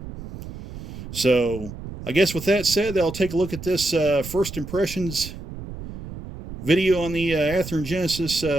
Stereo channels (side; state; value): right; noise; rumble, 11 dB below the sound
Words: So, I guess with that said, I'll take a look at this first impressions video on the Athearn Genesis